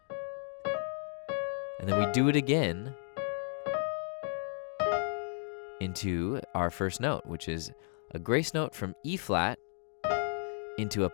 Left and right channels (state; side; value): silent; right; 55 dB below the other